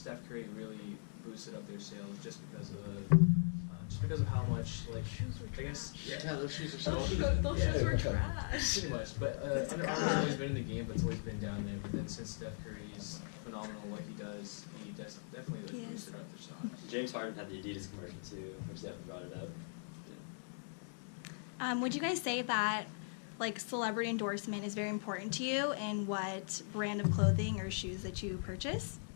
Curry really boosted up their sales just because of how much like Shoes were I guess Yeah, those shoes are so Those Yeah. shoes were trash. pretty much. But Under Armour has always been in the game, but it's always been down there. But then since Steph Curry's phenomenal what he does, he definitely He like is. boosted up their stock. James Harden had the Adidas commercial too, which definitely brought it up. Would you guys say that like celebrity endorsement is very important to you in what brand of clothing or shoes that you purchase?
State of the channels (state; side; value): silent; right; digital silence